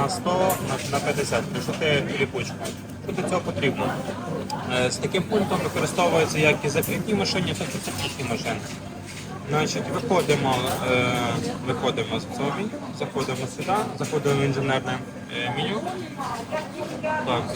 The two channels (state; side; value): identical; both; correlation 1.00